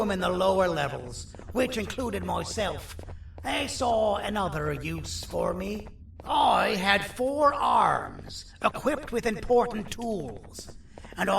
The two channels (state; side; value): identical; both; correlation 1.00